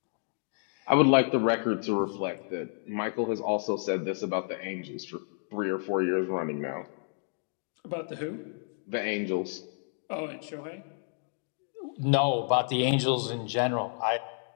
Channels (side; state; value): right; silent; 58 dB below the other